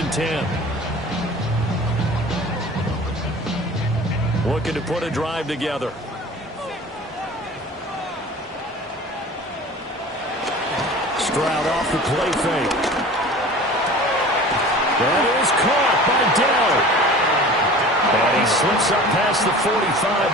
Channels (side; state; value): both; normal; correlation 0.41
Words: and 10. Looking to put a drive together. Stroud off the play fake. That is caught by Dell. And he slips up past the 45